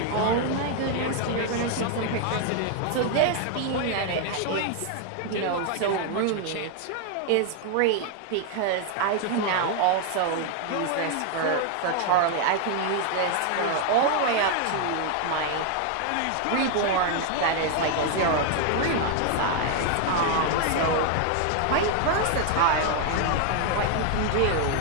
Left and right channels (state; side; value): different; both; correlation 0.00